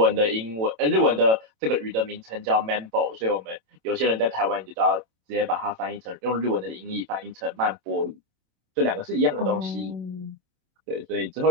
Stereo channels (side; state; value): left; late; 27 ms